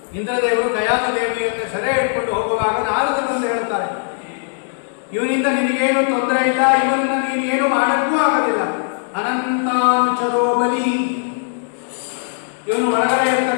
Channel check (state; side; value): silent; right; 67 dB below the other